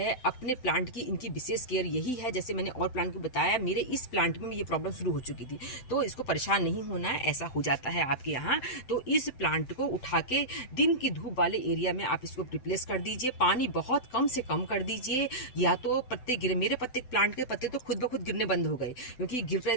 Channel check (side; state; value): right; late; 7.8 ms